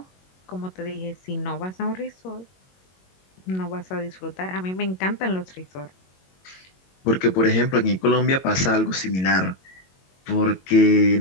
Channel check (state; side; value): late; right; 22 ms